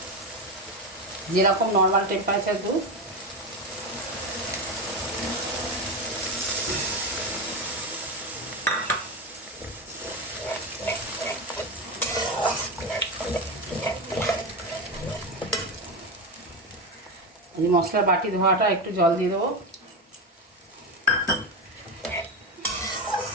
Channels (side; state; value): both; normal; correlation 0.17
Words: যেরকম নর্মাল টেম্পারেচার দুধ এই মশলার বাটি ধোয়াটা একটু জল দিয়ে দেবো।